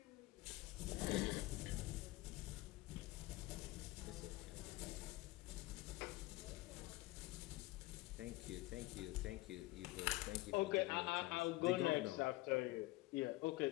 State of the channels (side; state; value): right; quieter; 19.7 dB